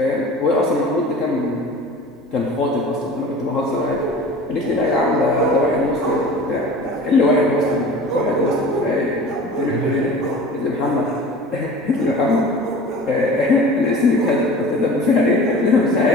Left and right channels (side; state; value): both; normal; correlation 0.40